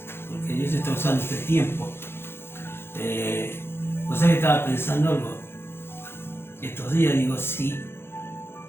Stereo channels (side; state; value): right; late; 0.11 ms